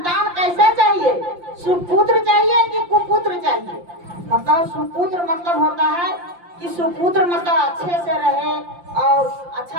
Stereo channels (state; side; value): late; left; 5.7 ms